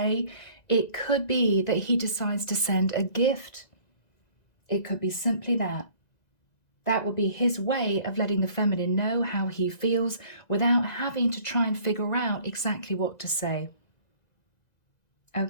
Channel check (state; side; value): late; right; 1.9 ms